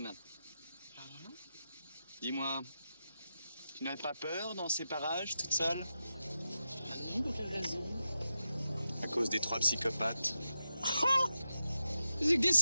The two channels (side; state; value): both; inverted; correlation -0.90